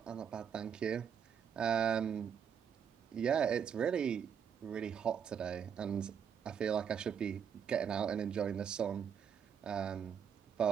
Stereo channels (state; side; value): quieter; left; 7.6 dB